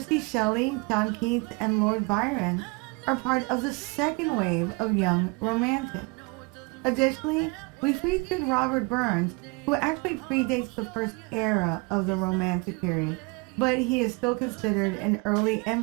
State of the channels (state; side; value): quieter; left; 28.9 dB